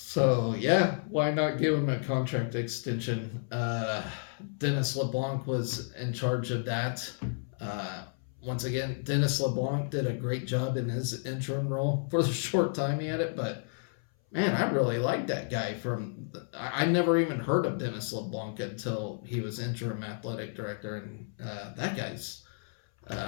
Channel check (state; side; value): silent; right; 57 dB below the other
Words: yeah, why not give him a contract extension? Dennis LeBlanc was in charge of that. Once again, Dennis LeBlanc did a great job in his interim role for the short time he had it, but man, I really like that guy. I never even heard of Dennis LeBlanc until he was interim athletic director, and that guy's